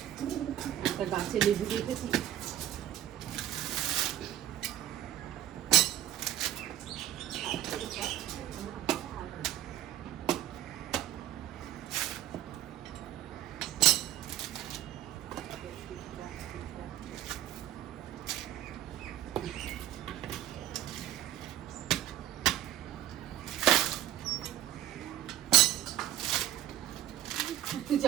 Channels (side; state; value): left; quieter; 11.9 dB